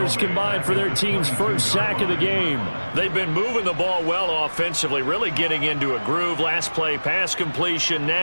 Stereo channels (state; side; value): inverted; both; correlation -1.00